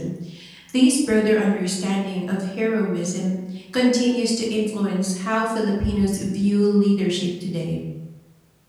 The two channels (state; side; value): identical; both; correlation 1.00